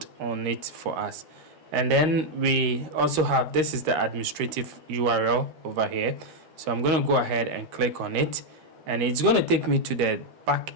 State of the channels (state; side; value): late; left; 13 ms